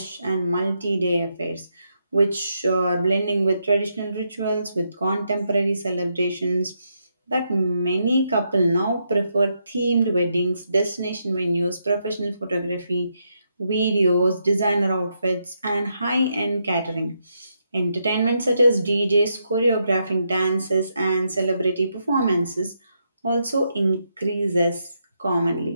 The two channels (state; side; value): inverted; both; correlation -0.80